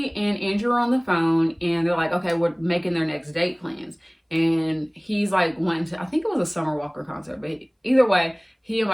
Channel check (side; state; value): both; identical; correlation 1.00